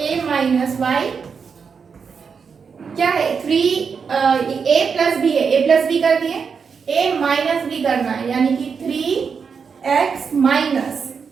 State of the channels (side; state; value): left; quieter; 6.0 dB